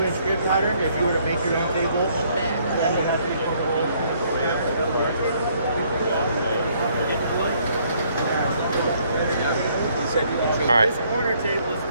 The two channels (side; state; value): both; inverted; correlation -0.66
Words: grid pattern. If you were to make your own table, that would have 3/4 holes. All right. This corner table is